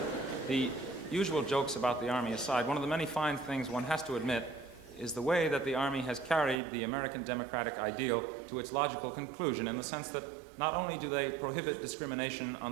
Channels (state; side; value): drops out; left; at 6.6 s